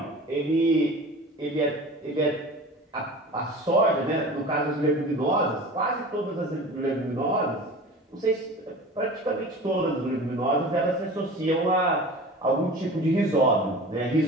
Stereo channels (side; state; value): both; normal; correlation 0.38